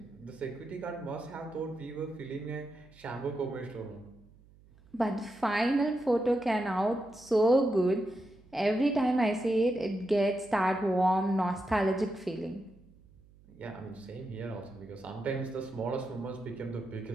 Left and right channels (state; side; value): noise; right; hum, 26 dB below the sound